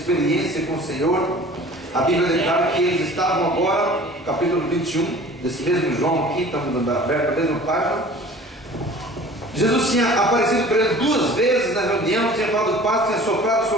com o Senhor, a Bíblia declara que eles estavam agora, no capítulo 21, desse mesmo João aqui, estamos aberto a mesma página. Jesus tinha aparecido para eles 2 vezes na reunião, tinha falado paz, tinha soprado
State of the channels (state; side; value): normal; both; correlation 0.45